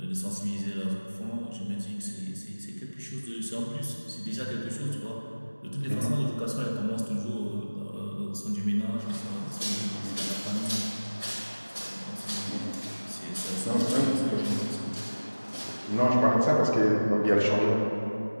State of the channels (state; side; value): inverted; both; correlation -1.00